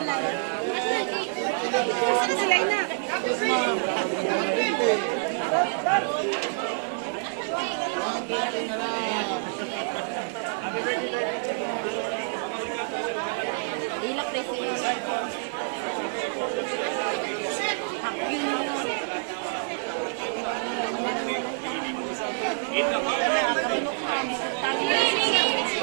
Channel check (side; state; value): left; silent; 60 dB below the other